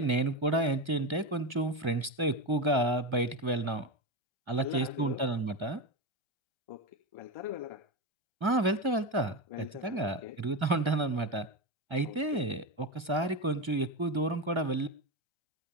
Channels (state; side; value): late; left; 2.0 ms